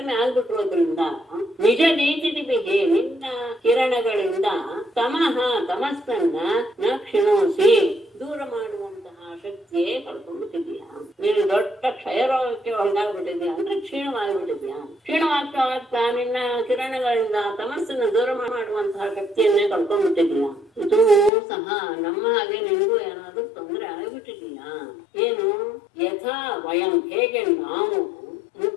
ಆಗ್ಬಿಟ್ಟಿರೋದ್ರಿಂದ ನಿಜ ನೀತಿದಿಬಿಹಿ, ನಿನ್ನ ಕಿರಣಗಳಿಂದ ತಮಸ್ಸನ್ನ ನ ಕ್ಷಿಣೋಸಿ, ದೂರ ಮಾಡುವಂತಹ ಶಕ್ತಿಯೇ ಕಳ್ಕೊಂಡ್ಬಿಟ್ಟಿದ್ಯಾ. ನೀನು ದೊಡ್ಡ ಕ್ಷಯರೋಗಕ್ಕೆ ಒಳಗಾಗ್ಬಿಟ್ಟಿದ್ಯಾ ಅಂದ್ರೆ ಕ್ಷೀಣವಾಗಿಬಿಟ್ಟಿದ್ಯಾ. ಕ್ಷೀಣವಾಗ್ತಾ ನಿನ್ನ ಕಿರಣಗಳಿಂದ ತಮಸ್ಸನ್ನು ದೂರ ಮಾಡುವಂತಹ ಶಕ್ತಿಯನ್ನೇ ಕಳ್ಕೊಂಡ್ಬಿಟ್ಟಿದ್ಯಾ. ಇದು ಸಹ ನಮ್ಮ ಹಾಗೆ ನಿನಗೂ ಏನಾದ್ರೂ ತೊಂದರೆ ಆಗಿಬಿಟ್ಟಿದ್ಯಾ ಏನು? ಯಥಾ ವಯಂ, ಹೇಗೆ ನಾವು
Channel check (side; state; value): right; drops out; at 21.3 s